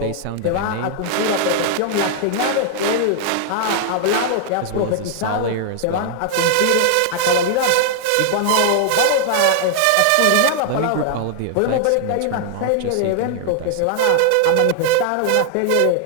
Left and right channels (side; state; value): both; different; correlation 0.00